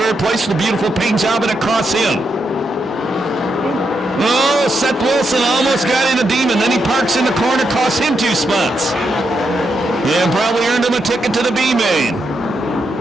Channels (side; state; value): both; normal; correlation 0.82